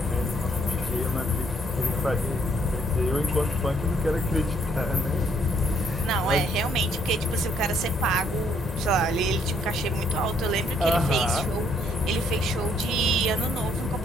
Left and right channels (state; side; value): normal; both; correlation 0.68